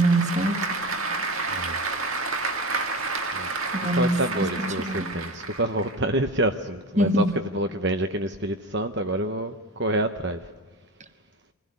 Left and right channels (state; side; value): normal; both; correlation 0.27